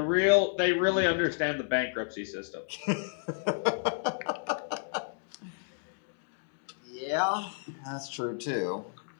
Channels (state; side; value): silent; right; digital silence